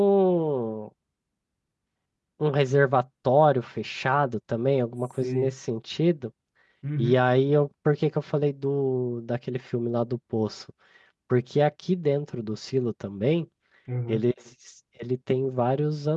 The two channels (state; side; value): identical; both; correlation 1.00